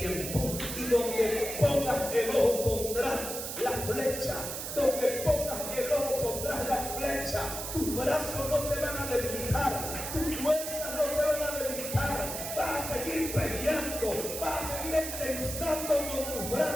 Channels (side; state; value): right; noise; hiss, 6 dB below the sound